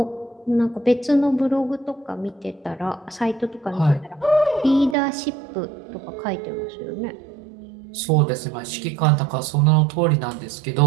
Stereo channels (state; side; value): drops out; left; at 5.0 s